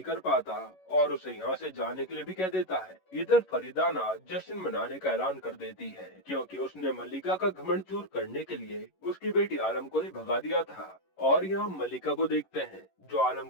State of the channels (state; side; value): late; right; 11 ms